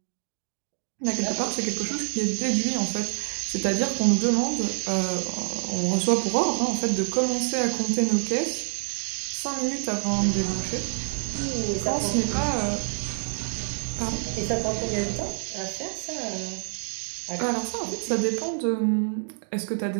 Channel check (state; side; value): silent; left; 60 dB below the other